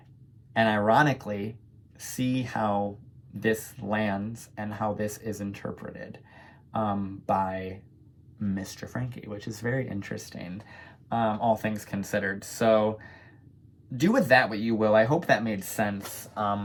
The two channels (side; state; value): both; identical; correlation 1.00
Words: And ironically, see how this lands and how this is interpreted by Mr. Frankie, which is very interesting, all things considered. So do with that what you will. I hope that made sense.